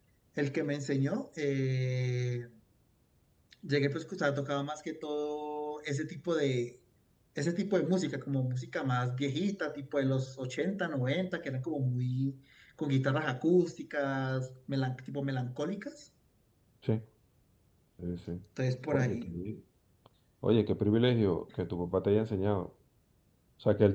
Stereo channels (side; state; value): both; identical; correlation 1.00